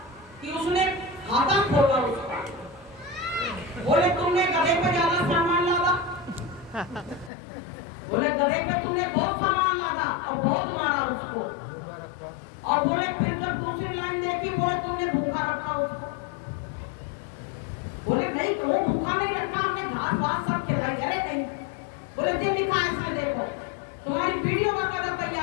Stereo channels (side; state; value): right; drops out; at 7.3 s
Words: कि उसने खाता खोला उसका, बोले तुमने गधे पे ज्यादा सामान लादा, बोले गधे पे तुमने बहुत सामान लादा और बहुत मारा उसको। और बोले फिर जब दूसरी लाइन देखी, बोले तुमने भूखा रखा उसको, बोले नहीं क्यों भूखा नहीं रखा, हमने घास वास सब खिलाई। अरे नहीं, बोले जो लिखा है इसमें देखो, तुम्हारी वीडियो का कदम